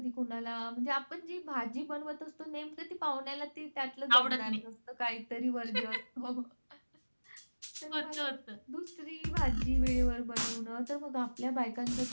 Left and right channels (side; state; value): both; inverted; correlation -1.00